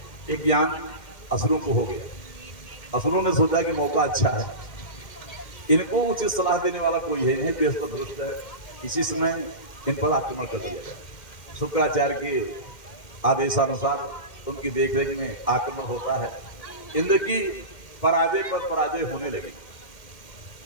एक ज्ञान असुरों को हो गया। असुरों ने सोचा कि मौका अच्छा है, इनको उचित सलाह देने वाला कोई है नहीं, बृहस्पति दुष्ट है, इसी समय इन पर आक्रमण कर दिया जाए। शुक्राचार्य के आदेशानुसार उनकी देखरेख में आक्रमण होता है। इंद्र की पराजय पर पराजय होने लगी।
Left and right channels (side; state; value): right; late; 2.1 ms